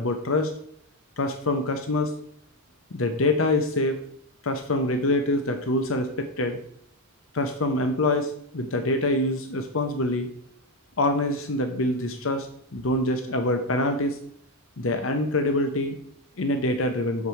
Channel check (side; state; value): both; normal; correlation 0.09